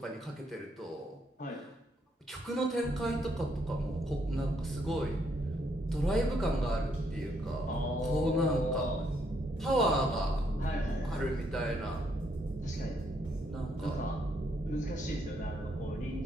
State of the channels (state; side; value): normal; both; correlation 0.73